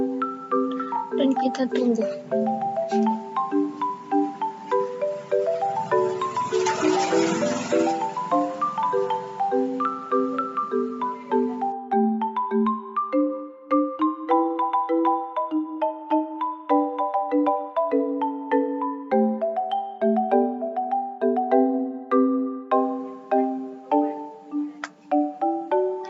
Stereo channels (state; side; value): identical; both; correlation 1.00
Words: dan kita tunggu.